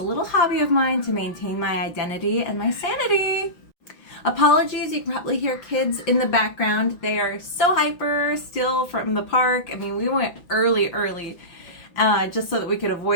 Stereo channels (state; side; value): late; right; 5.8 ms